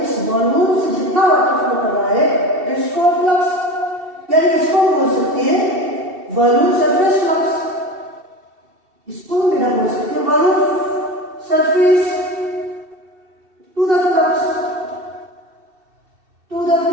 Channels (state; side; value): late; left; 2.7 ms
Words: इस वॉल्यूम से जितना वाटर फ्लो कर रहा है, दैट इज कॉल्ड फ्लक्स. यानी इसको बोल सकते हैं वॉल्यूम सरफेस फ्लक्स. इसको मेरा बोल सकते हैं volume surface to the flux.